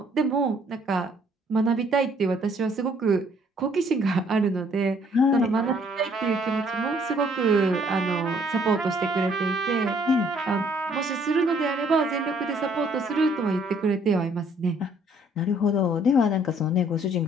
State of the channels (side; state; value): both; normal; correlation 0.63